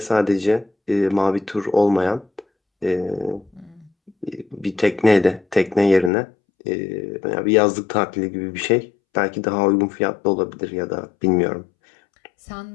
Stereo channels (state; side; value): drops out; right; at 6.1 s